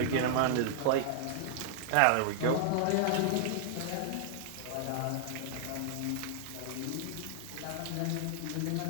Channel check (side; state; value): both; different; correlation -0.01